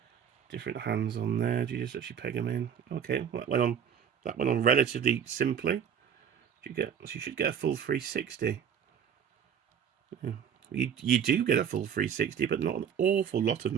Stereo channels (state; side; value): quieter; left; 7.9 dB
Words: hands on there. Do you just actually peg them in? Okay, that went on relatively simply. You should get a full 360. Yeah. You do get a full 360, but not an awful lot of